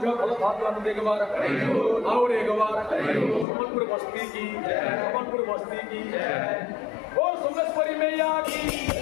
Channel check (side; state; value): right; drops out; at 3.5 s